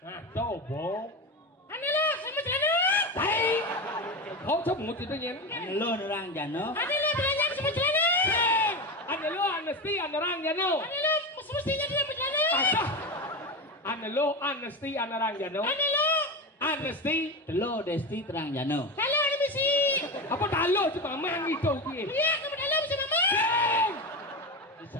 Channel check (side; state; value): both; normal; correlation 0.20